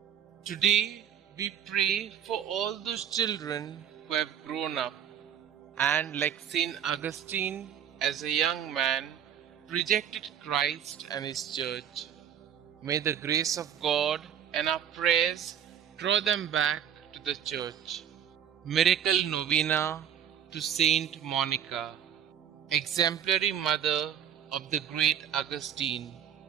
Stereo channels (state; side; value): quieter; left; 9.2 dB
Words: Today we pray for all those children who have grown up and, like Saint Augustine, as a young man, rejected Christ and His Church. May the grace of God and our prayers draw them back to the Church. Miracle Novena to Saint Monica, exemplary mother of the great Augustine.